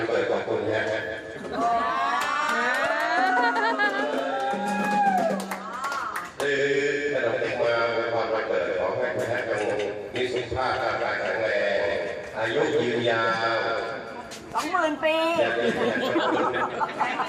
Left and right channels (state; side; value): identical; both; correlation 1.00